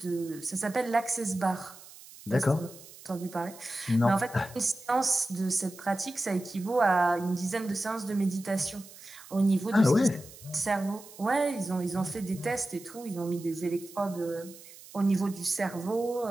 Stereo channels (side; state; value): right; noise; hiss, 19 dB below the sound